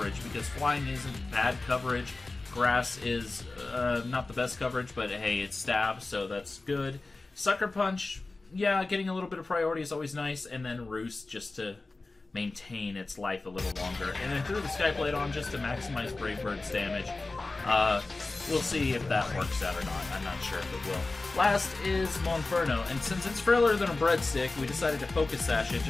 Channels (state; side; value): quieter; right; 3.4 dB